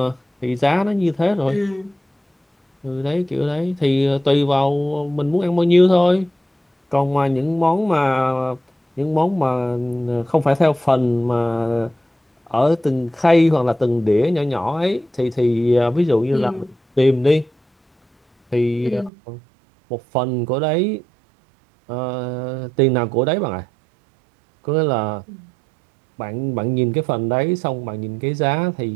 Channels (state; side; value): drops out; left; at 19.1 s